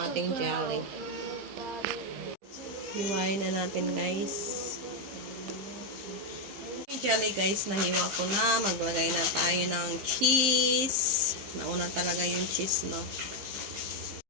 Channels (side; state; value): left; late; 15 ms